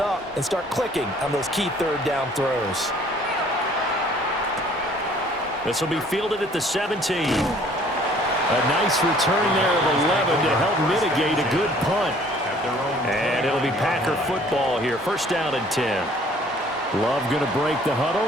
and start clicking on those key third down throws. This will be fielded at the 17. A nice return there of 11 to help mitigate a good punt. And it'll be Packer football here. First down and 10. Love going to break the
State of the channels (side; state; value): both; normal; correlation 0.56